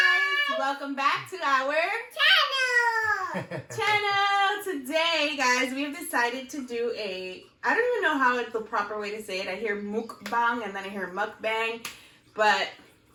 Welcome back to our channel! Today, guys, we have decided to do I don't even know how it's the proper way to say it. I hear mukbang and then I hear mukbang, but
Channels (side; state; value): both; identical; correlation 1.00